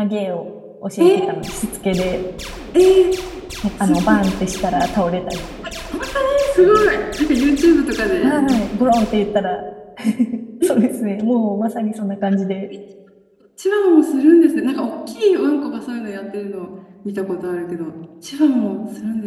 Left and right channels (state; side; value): identical; both; correlation 1.00